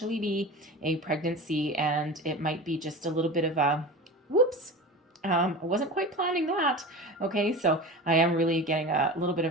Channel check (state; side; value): normal; both; correlation 0.31